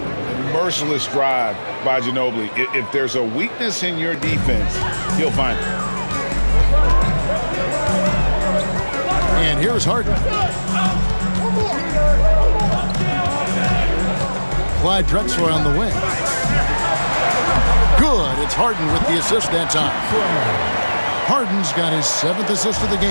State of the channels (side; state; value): both; inverted; correlation -1.00